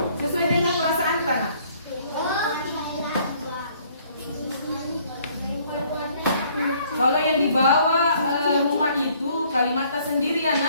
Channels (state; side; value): inverted; both; correlation -0.62